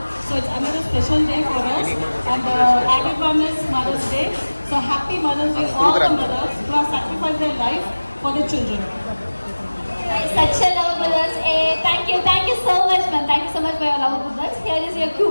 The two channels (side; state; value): both; inverted; correlation -1.00